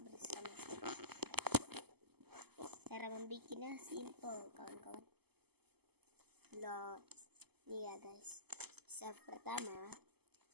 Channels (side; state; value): left; late; 0.97 ms